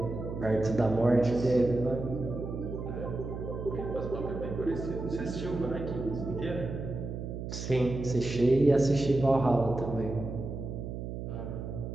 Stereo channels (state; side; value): noise; right; hum, 6 dB below the sound